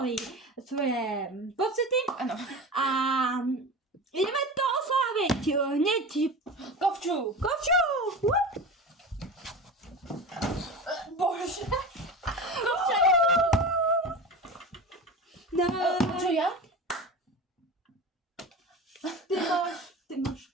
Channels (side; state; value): both; normal; correlation 0.30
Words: svoje pocity. Áno. A ideme to osláviť hneď. Kovču! Wup. Bože! Kovča! No, Čo ja? ty máš